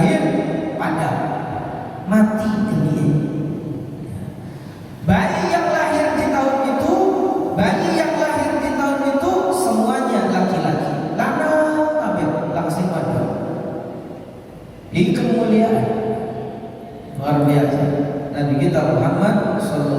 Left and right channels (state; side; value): identical; both; correlation 1.00